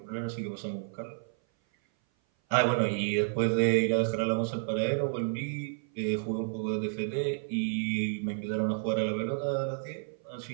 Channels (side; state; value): left; silent; 56 dB below the other